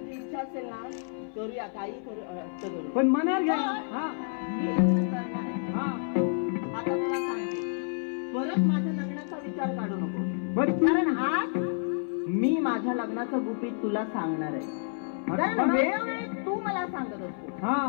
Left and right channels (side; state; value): right; silent; 57 dB below the other